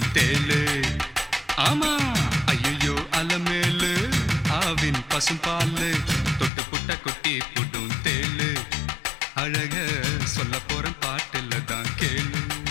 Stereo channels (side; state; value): right; drops out; at 6.5 s